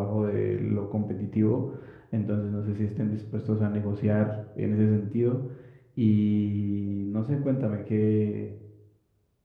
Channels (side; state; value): both; identical; correlation 1.00